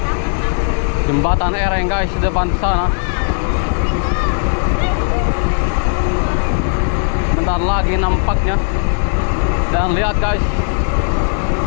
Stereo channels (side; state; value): right; silent; 59 dB below the other